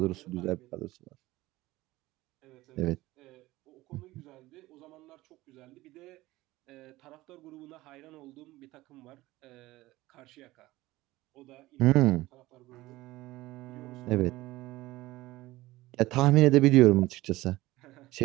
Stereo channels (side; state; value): left; quieter; 18.3 dB